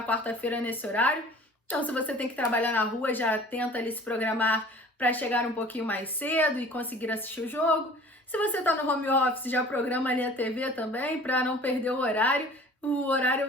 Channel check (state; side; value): normal; both; correlation 0.46